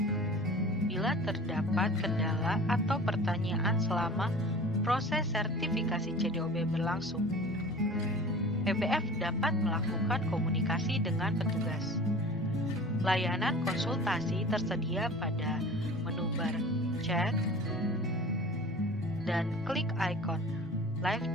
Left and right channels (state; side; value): normal; both; correlation 0.40